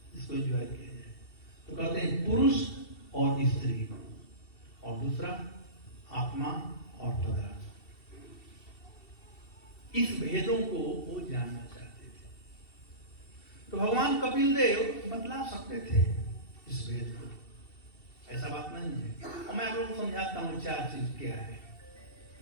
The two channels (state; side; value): late; right; 2.7 ms